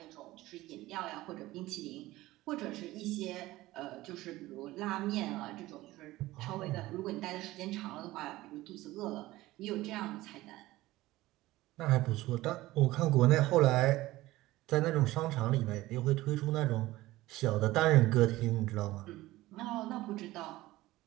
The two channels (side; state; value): left; quieter; 17.6 dB